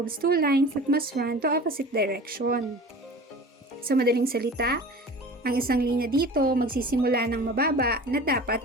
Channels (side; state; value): both; normal; correlation 0.39